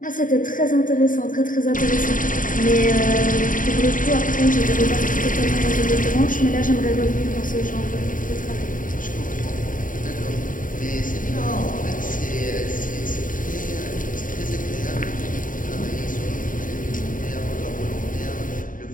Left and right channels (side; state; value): right; late; 0.39 ms